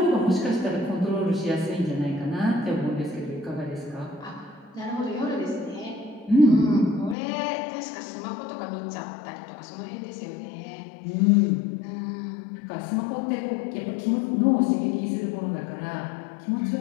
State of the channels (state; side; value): drops out; right; at 7.2 s